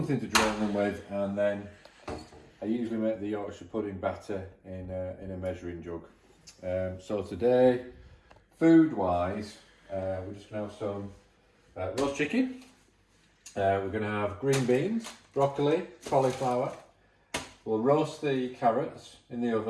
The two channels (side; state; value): both; identical; correlation 1.00